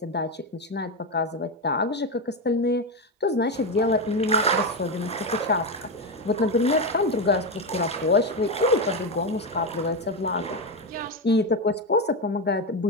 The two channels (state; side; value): normal; both; correlation 0.12